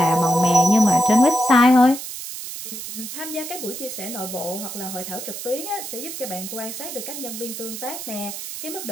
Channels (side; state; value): right; noise; hiss, 9 dB below the sound